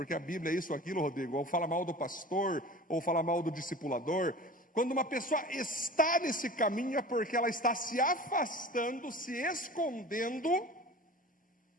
a Bíblia é isso ou aquilo, Rodrigo, ou fala mal do pastor, ou fala mal do discipulador. Quando uma pessoa está nesse caminho é porque ela está se afastando, se escondendo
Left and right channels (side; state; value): both; normal; correlation 0.38